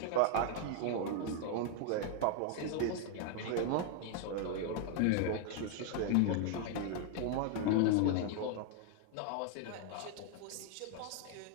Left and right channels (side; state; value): both; different; correlation 0.00